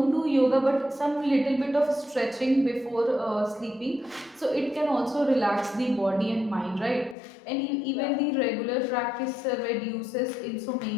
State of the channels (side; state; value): right; drops out; at 7.2 s